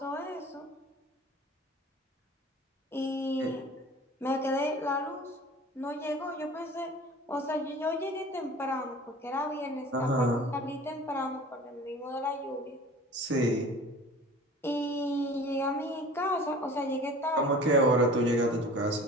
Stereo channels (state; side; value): normal; both; correlation 0.42